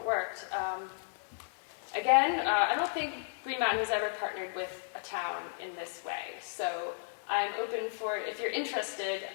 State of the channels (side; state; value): right; silent; digital silence